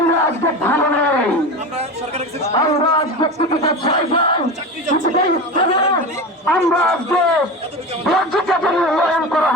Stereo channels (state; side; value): normal; both; correlation 0.26